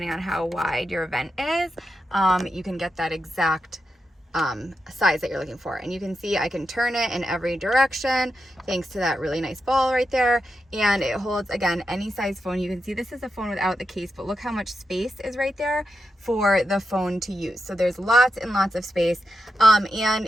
on how wide your vent is, you can get that exact size that you're looking for. And you can see I can turn it in every direction thanks to that really nice ball right there, and it holds, again, any size phone. You can see this is a phone without the case, but look how much space is right there for the phone to use. So there's lots and lots of space, and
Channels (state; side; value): normal; both; correlation 0.87